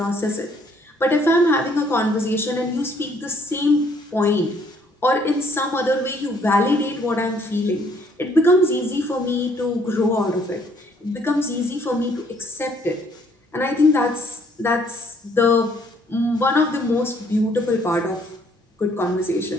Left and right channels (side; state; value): both; normal; correlation 0.64